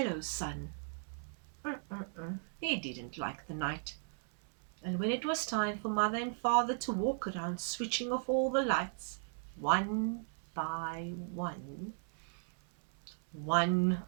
sun. He didn't like the night. And when it was time for mother and father to walk around switching off all the lights, one by one,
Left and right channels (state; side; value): silent; left; digital silence